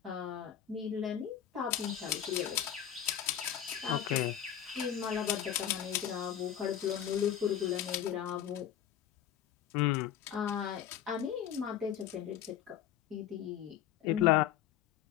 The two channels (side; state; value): right; quieter; 10.2 dB